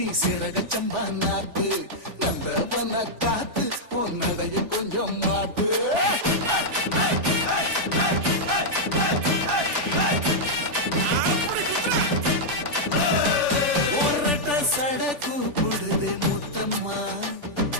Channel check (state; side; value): late; left; 3.4 ms